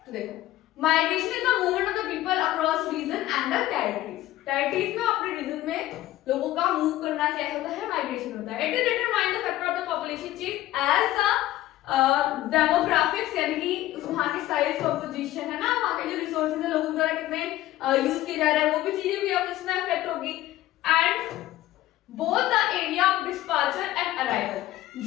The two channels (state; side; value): quieter; right; 15.1 dB